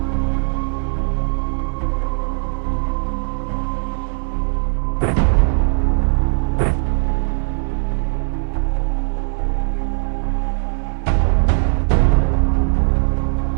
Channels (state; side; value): silent; left; digital silence